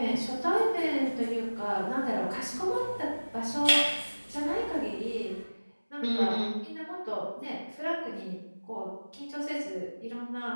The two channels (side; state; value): both; inverted; correlation -1.00